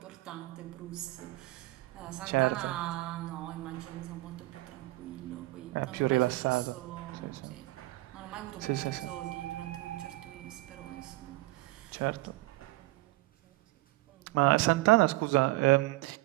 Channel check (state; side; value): quieter; left; 20.3 dB